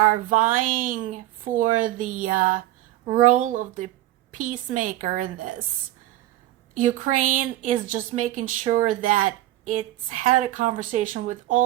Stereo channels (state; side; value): quieter; left; 15.1 dB